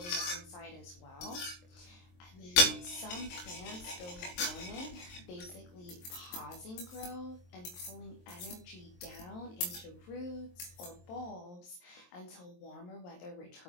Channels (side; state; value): right; late; 22 ms